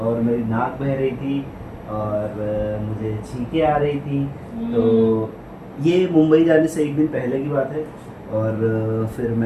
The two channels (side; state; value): both; identical; correlation 1.00